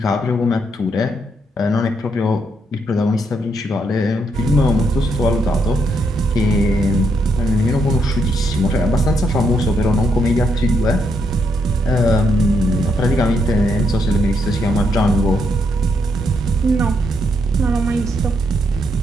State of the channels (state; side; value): normal; both; correlation 0.77